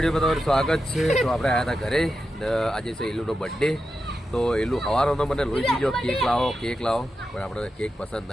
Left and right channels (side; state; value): both; normal; correlation 0.89